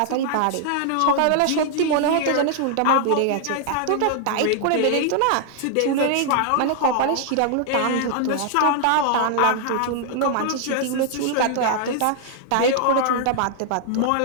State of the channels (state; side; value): different; both; correlation 0.00